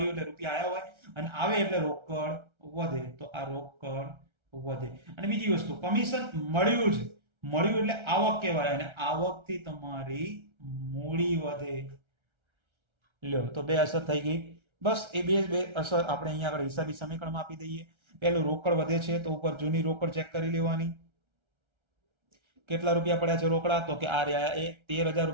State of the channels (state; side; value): late; left; 1.3 ms